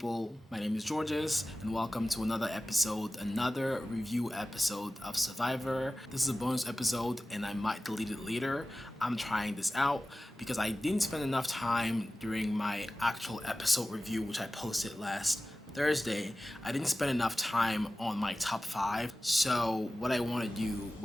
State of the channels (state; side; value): normal; both; correlation 0.96